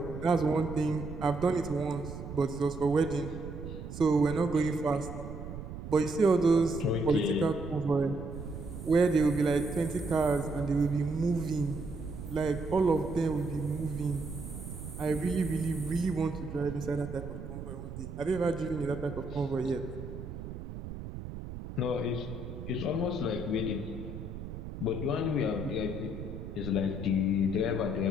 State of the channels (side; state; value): right; noise; rumble, 9 dB below the sound